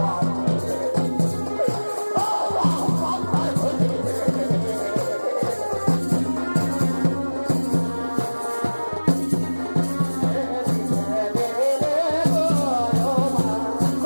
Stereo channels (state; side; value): inverted; both; correlation -1.00